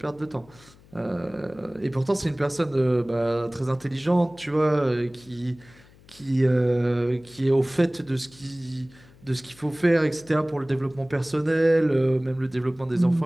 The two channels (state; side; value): noise; left; hum, 26 dB below the sound